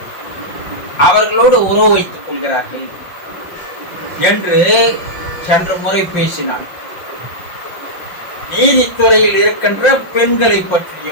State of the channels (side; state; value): right; late; 5.6 ms